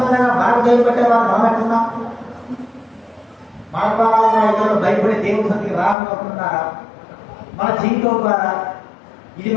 మనకు దయపెట్టే వాళ్ళు మనం ఎట్టున్నాం? మన ద్వారా ఇతరులు భయపడే దేవుని సన్నిధికి రాకపోతున్నారా? మన జీవితం ద్వారా ఇది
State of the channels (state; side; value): drops out; right; at 6.0 s